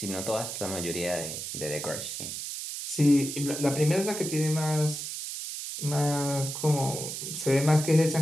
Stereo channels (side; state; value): right; noise; hiss, 6 dB below the sound